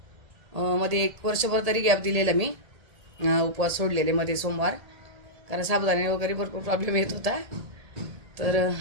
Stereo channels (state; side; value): late; left; 1.7 ms